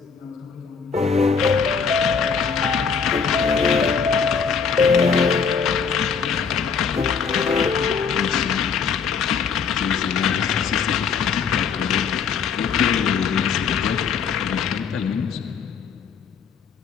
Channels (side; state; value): right; quieter; 6.1 dB